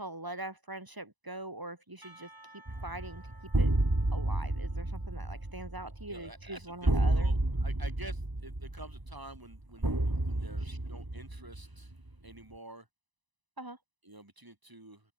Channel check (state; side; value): late; left; 1.0 ms